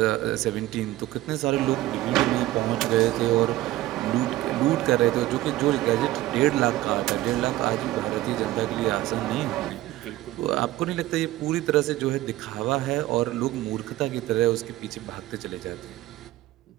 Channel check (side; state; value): left; quieter; 16.1 dB